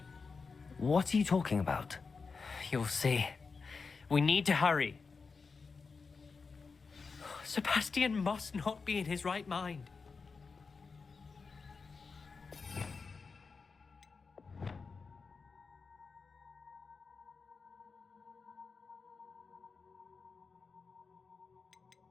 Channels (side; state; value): right; quieter; 4.8 dB